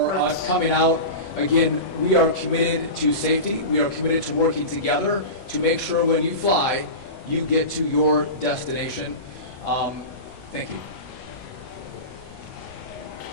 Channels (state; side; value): late; right; 21 ms